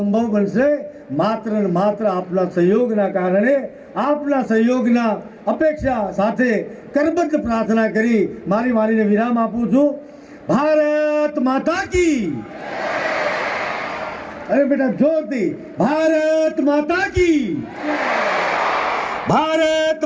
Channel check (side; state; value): both; identical; correlation 1.00